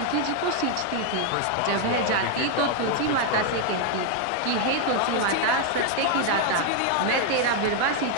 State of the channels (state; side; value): different; both; correlation 0.00